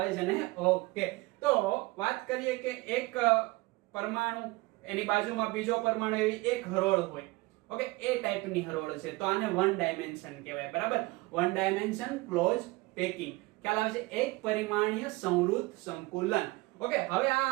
છે ને? ઓકે, તો વાત કરીએ કે એક પરમાણુ, એની બાજુમાં બીજો પરમાણુ, એવી એક હરોળ હોય. ઓકે, એ ટાઈપની હરોળ છે, તો આને વન ડાયમેન્શન કહેવાય. બરાબર, વન ડાયમેન્શન ક્લોઝ પેકિંગ. ખ્યાલ આવે છે? એક પરિમાણીય સંવૃત સંકુલન. ઓકે, હવે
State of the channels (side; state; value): left; quieter; 22.5 dB